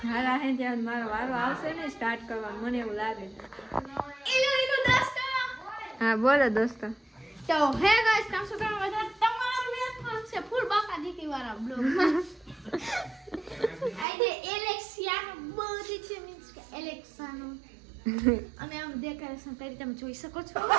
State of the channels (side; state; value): left; drops out; at 14.1 s